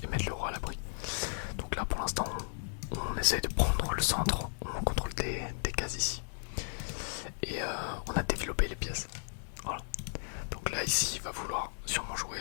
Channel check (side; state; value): right; silent; digital silence